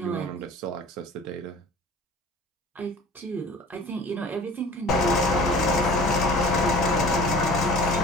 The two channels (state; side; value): normal; both; correlation 0.44